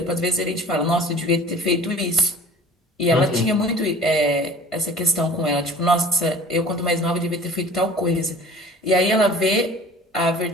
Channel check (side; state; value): both; normal; correlation 0.45